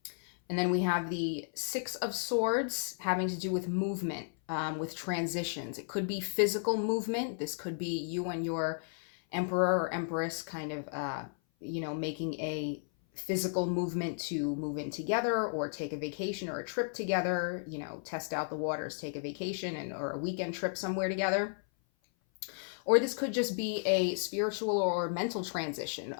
And then we have the Six of Swords having to do with movement, with transitions. It could be physical movement. This could be you and your Emperor or Empress kind of, you know, making a physical movement to move in together or take a vacation or a trip together, you know, test out the waters, take a vacation or a weekend trip somewhere together. Or this could just be a spiritual or mental transition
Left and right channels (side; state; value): right; silent; 55 dB below the other